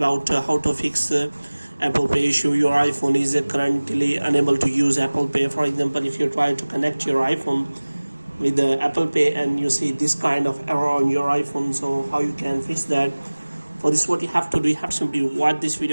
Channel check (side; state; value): both; inverted; correlation -1.00